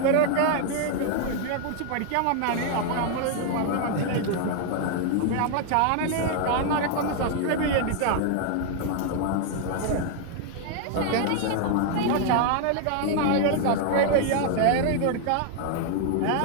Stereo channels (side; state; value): both; different; correlation 0.00